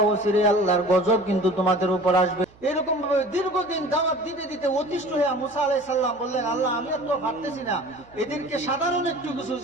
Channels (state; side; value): noise; right; hum, 27 dB below the sound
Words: অচিরে আল্লাহর গজব কিন্তু তোমাদের উপর আসবে। এরকম ভাবে দীর্ঘদিন দাওয়াত দিতে দিতে অতিষ্ঠ হয়ে মুসা আলাইহিস সালাম বললেন, আল্লাহ আমি তো পারতেছি না, এদেরকে সাধারণ একটু কিছু,